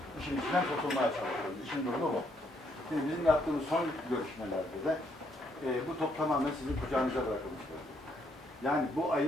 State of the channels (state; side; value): normal; both; correlation 0.72